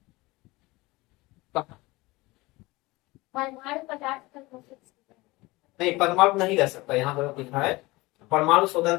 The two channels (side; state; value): right; quieter; 21.5 dB